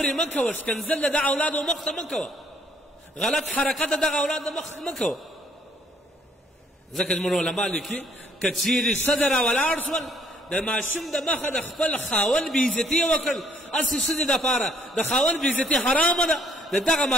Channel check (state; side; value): normal; both; correlation 0.65